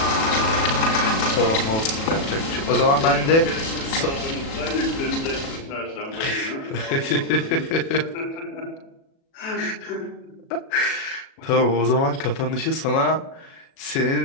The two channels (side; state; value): right; late; 37 ms